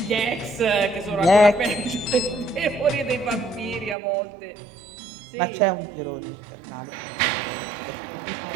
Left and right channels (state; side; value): drops out; left; at 4.0 s